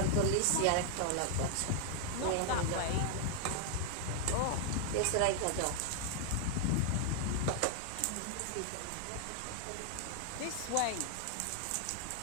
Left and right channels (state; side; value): different; both; correlation 0.00